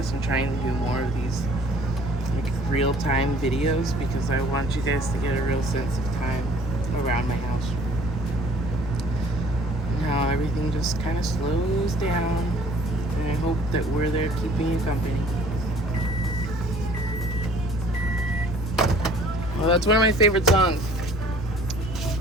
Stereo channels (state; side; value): normal; both; correlation 0.54